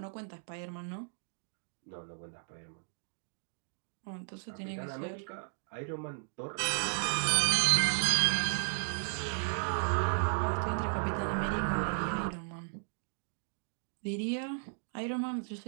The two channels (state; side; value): silent; left; digital silence